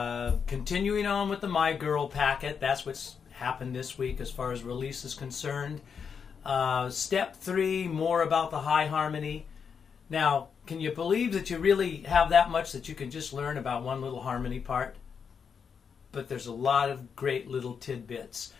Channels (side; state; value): right; quieter; 6.5 dB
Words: continuing on with the My Girl packet. That's what's happened this week as far as release is concerned. Step 3, more about the high harmony. Now, can you believe that you really have that much that you can just learn about one little harmony part? But there's a lot of great little tidbits.